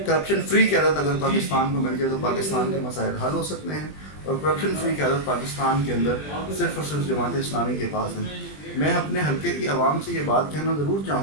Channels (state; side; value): late; right; 20 ms